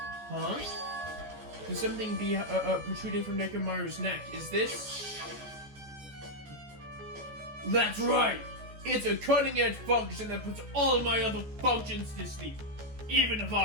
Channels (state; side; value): late; left; 14 ms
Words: Huh? There's something protruding from Nekomaru's neck. Is this? That's right! It's a cutting-edge function that puts all my other functions to sleep. Even if